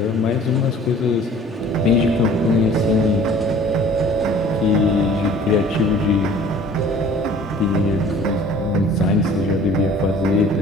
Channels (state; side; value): normal; both; correlation 0.49